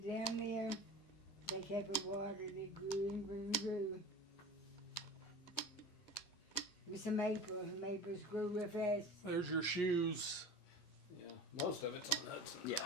it down there. They kept it watered, it grew and grew and grew. It was a maple. Maples grew real fast. There's your shoes. Yeah, most of it's on Hudson. Yeah.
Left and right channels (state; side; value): normal; both; correlation 0.35